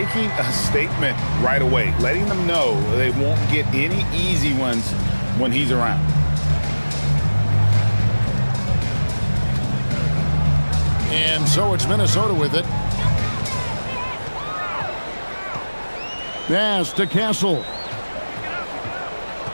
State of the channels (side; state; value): both; inverted; correlation -1.00